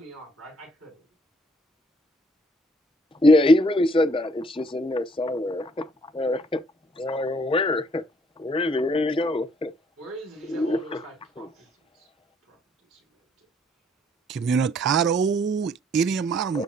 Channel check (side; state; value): both; normal; correlation 0.65